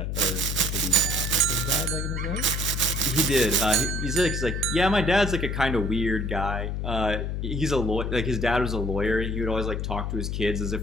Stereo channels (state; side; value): noise; left; hum, 2 dB below the sound